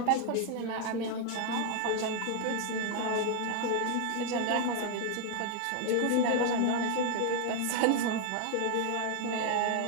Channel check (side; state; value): both; different; correlation 0.01